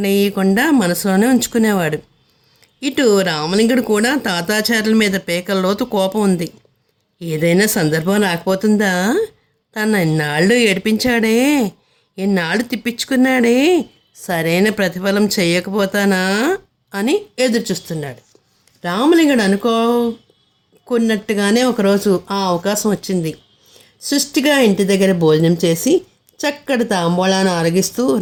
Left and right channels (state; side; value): identical; both; correlation 1.00